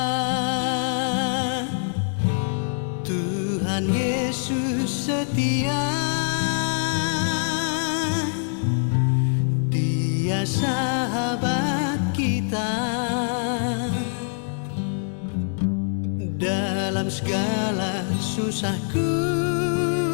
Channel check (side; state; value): right; silent; digital silence